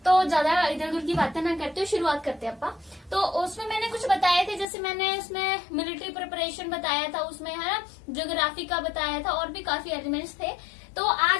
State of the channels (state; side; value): drops out; right; at 4.7 s